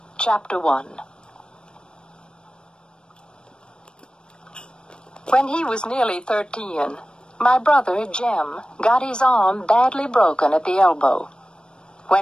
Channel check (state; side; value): late; right; 0.053 ms